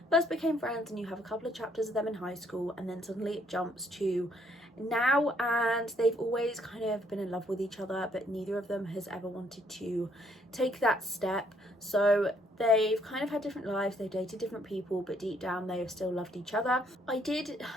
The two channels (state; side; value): normal; both; correlation 0.68